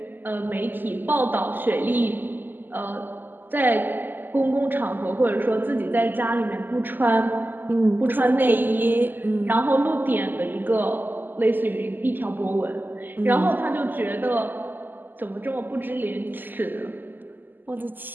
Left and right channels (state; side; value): late; left; 0.090 ms